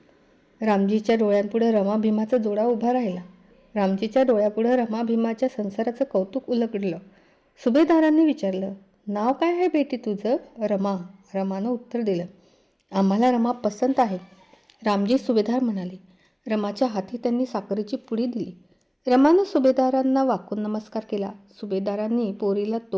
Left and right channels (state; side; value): identical; both; correlation 1.00